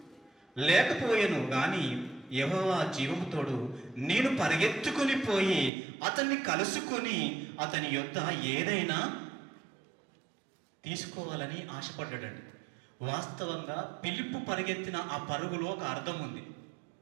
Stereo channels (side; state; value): left; drops out; at 5.7 s